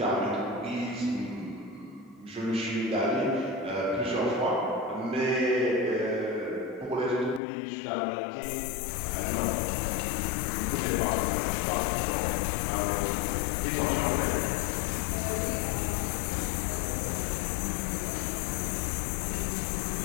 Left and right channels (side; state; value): right; drops out; at 7.4 s